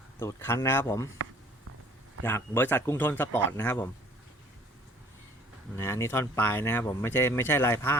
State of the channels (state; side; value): normal; both; correlation 0.55